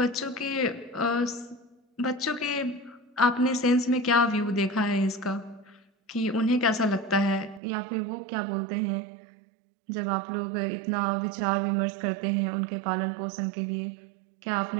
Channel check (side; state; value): left; drops out; at 7.6 s